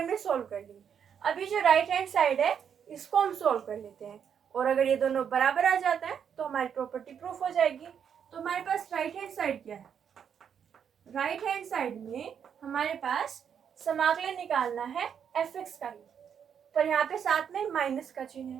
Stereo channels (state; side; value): quieter; left; 7.9 dB